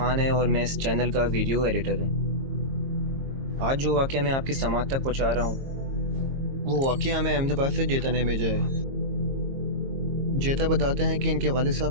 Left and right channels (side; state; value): left; late; 22 ms